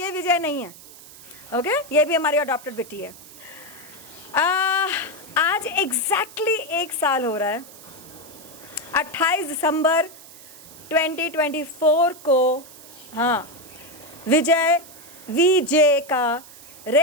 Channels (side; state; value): right; noise; hiss, 19 dB below the sound